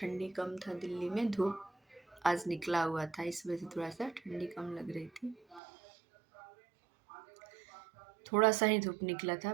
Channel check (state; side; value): drops out; left; at 5.6 s